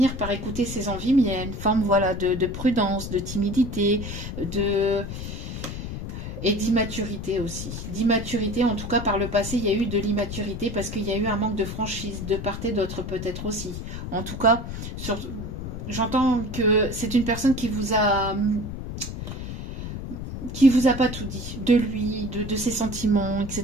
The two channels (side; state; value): left; noise; rumble, 7 dB below the sound